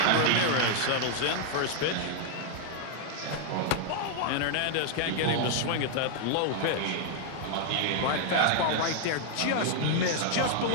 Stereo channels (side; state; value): both; different; correlation 0.00